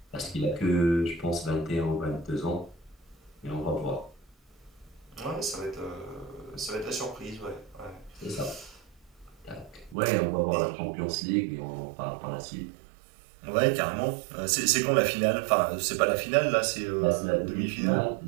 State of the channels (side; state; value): left; drops out; at 10.0 s